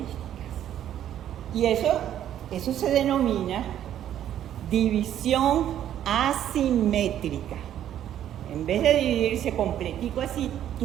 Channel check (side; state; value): left; quieter; 11.0 dB